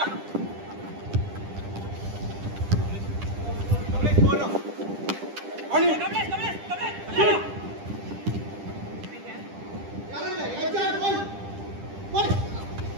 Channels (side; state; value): left; late; 10 ms